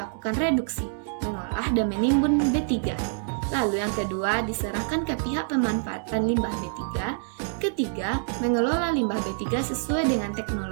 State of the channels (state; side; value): silent; left; digital silence